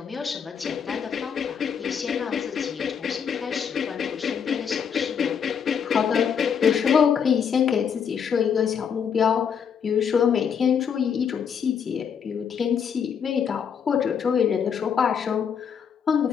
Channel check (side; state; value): right; quieter; 7.3 dB